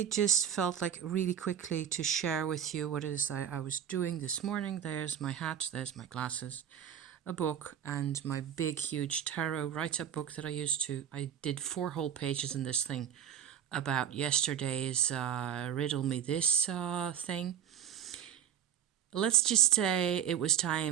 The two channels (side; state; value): left; quieter; 9.3 dB